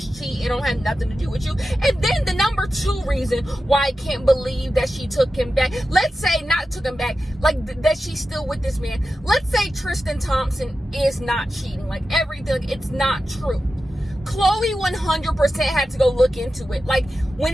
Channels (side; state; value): both; normal; correlation 0.92